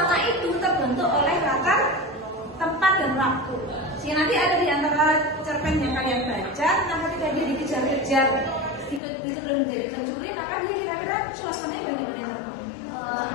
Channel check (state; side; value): drops out; right; at 9.0 s